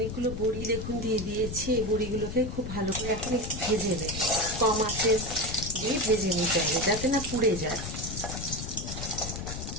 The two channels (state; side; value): noise; left; rumble, 7 dB below the sound